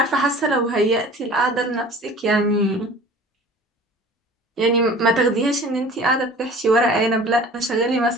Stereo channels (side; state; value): both; normal; correlation 0.44